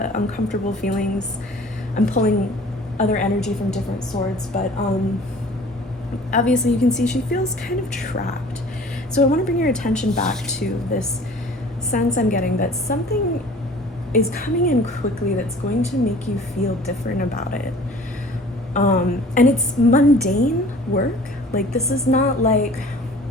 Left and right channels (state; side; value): normal; both; correlation 0.48